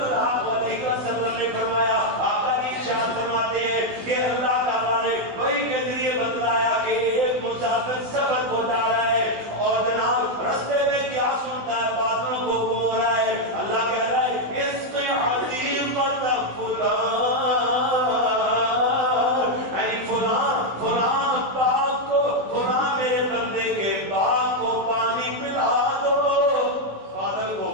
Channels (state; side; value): late; left; 16 ms